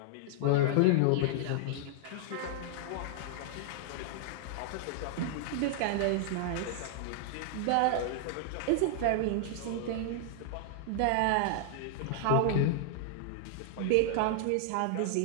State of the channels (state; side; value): different; both; correlation -0.01